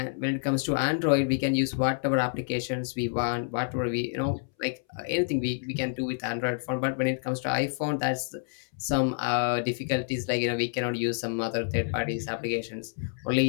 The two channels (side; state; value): right; silent; 59 dB below the other